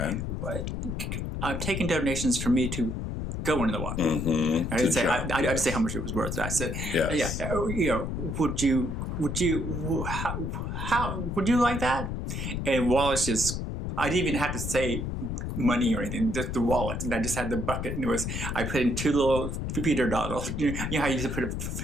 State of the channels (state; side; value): noise; left; rumble, 3 dB below the sound